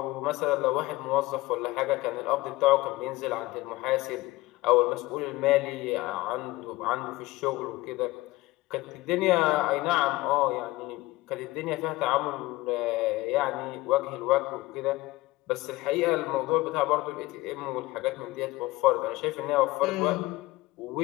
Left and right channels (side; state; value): right; quieter; 19.6 dB